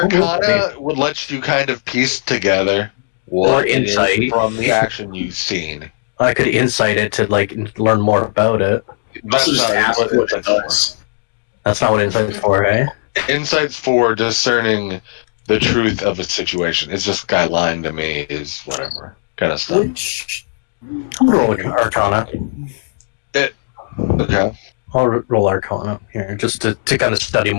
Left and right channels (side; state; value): right; silent; digital silence